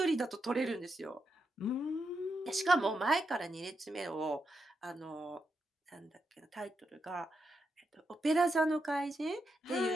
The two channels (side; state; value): both; normal; correlation 0.84